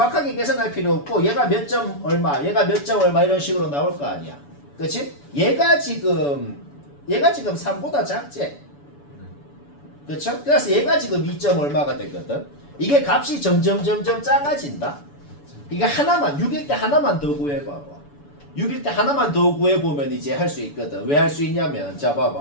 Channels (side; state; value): right; late; 7.0 ms